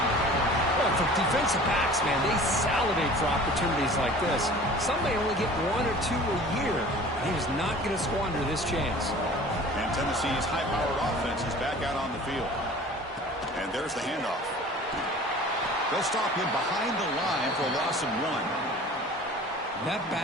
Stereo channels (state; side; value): normal; both; correlation 0.44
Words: Well, for defensive backs, man, they salivate for opportunities like this. Some may only get 1 or 2 a year. He was not going to squander this chance. And Tennessee's high-powered offense is back out on the field. And there's the handoff. They'll stop him behind the line for a loss of 1. That